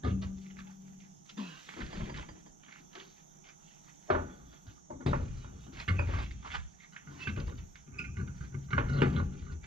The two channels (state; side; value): normal; both; correlation 0.67